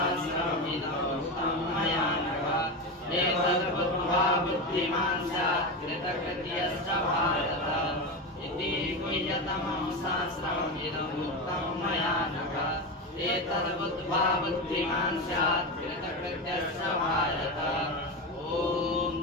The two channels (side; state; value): both; normal; correlation 0.18